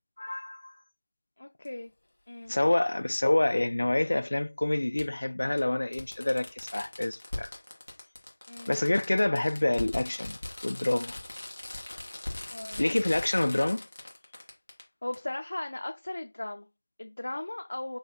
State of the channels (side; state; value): both; inverted; correlation -1.00